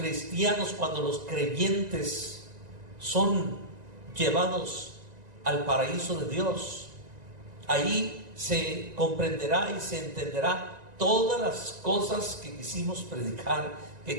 cuando los creyentes son llevados al paraíso de Dios, ahí se comprenderá y se entenderá todas las cosas que quisimos predicar,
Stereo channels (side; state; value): left; late; 1.9 ms